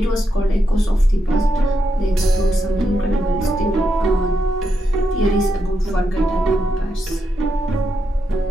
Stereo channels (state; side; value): normal; both; correlation 0.83